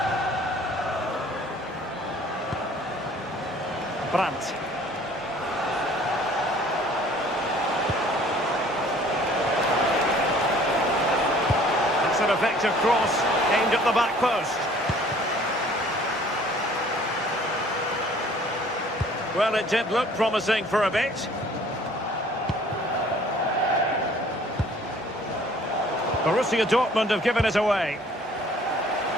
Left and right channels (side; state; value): both; normal; correlation 0.54